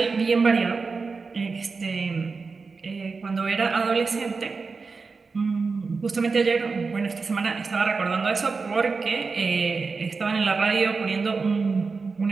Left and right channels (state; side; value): quieter; left; 4.5 dB